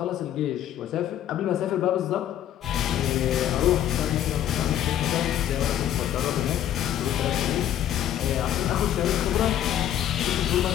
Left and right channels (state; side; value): quieter; right; 11.2 dB